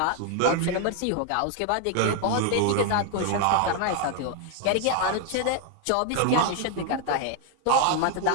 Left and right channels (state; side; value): different; both; correlation 0.01